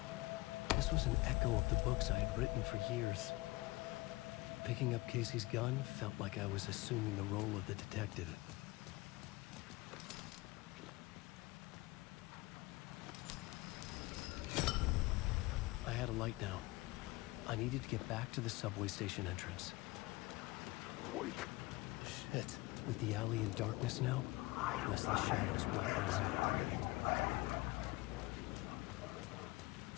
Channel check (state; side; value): quieter; right; 21.8 dB